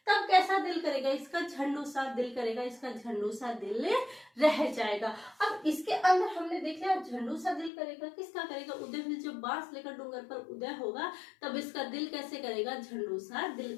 तब कैसा दिल करेगा इसका, झंडू सा दिल करेगा। इसका झंडू सा दिल रह जाएगा। अब इसके अंदर हमने देख लिया झंडू सा दिल करेगा, किसका करेगा, उदय भी। जब बांस लेकर डूंगर पर उदय होगा तब इसका दिल कैसे करेगा, झंडू सा दिल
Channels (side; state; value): right; drops out; at 7.7 s